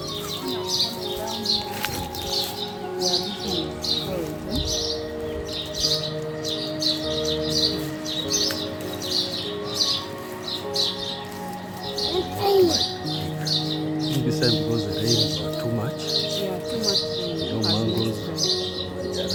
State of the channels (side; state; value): both; identical; correlation 1.00